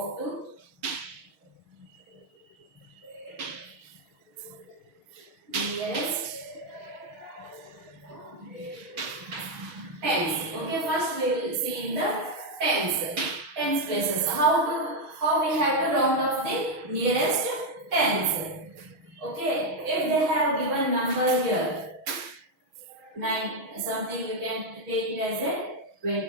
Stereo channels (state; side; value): late; left; 6.3 ms